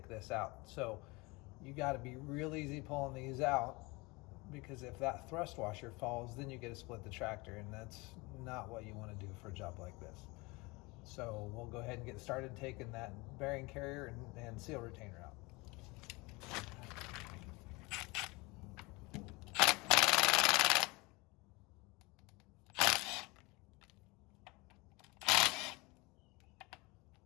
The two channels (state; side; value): quieter; right; 25.0 dB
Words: this out. So you got to be real easy pulling these out, because if that thrust washer falls, then you get to split the tractor, and that's not what you want to do for a job like this. So we'll go ahead and get started taking that bearing carrier and seal retainer out.